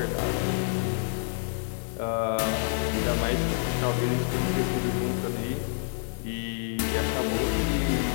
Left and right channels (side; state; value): right; silent; 60 dB below the other